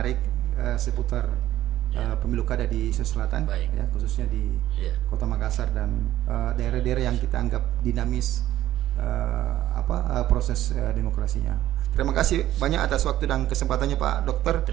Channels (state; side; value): quieter; left; 13.5 dB